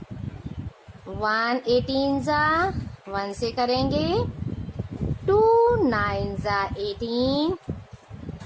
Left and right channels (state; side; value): identical; both; correlation 1.00